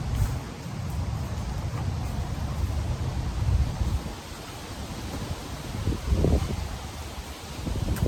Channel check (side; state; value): both; identical; correlation 1.00